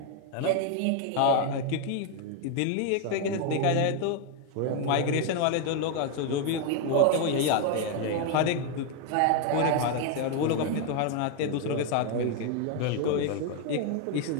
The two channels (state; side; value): different; both; correlation 0.01